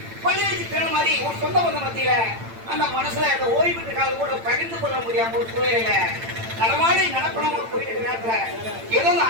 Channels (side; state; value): left; late; 8.9 ms